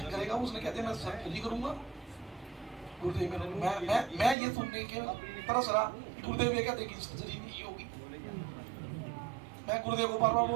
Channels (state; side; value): drops out; left; at 4.4 s